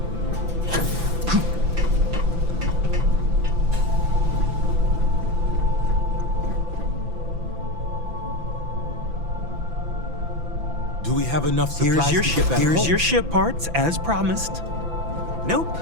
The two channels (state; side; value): late; left; 5.9 ms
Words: Do we have enough supplies to get back Here's home? your ship parts, as promised. Nope,